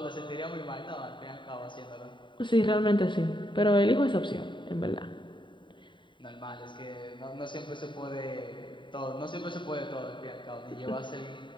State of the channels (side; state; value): right; late; 0.23 ms